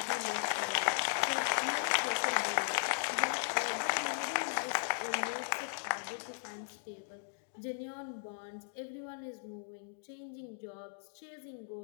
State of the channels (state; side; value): silent; right; digital silence